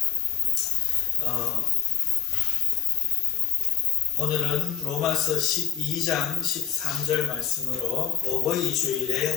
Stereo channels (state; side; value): quieter; right; 9.3 dB